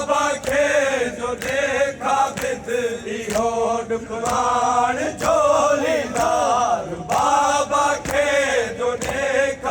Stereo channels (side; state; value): both; identical; correlation 1.00